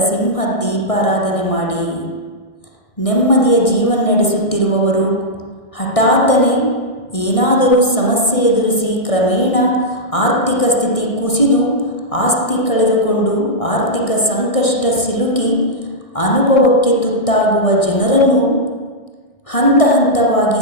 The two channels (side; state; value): right; late; 1.6 ms